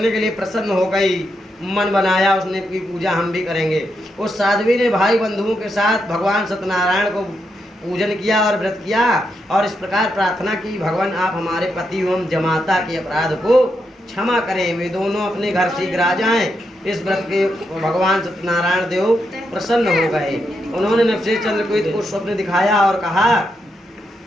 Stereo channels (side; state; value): both; normal; correlation 0.82